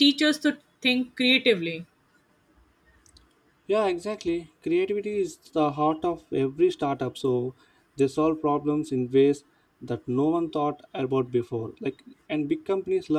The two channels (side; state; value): both; identical; correlation 1.00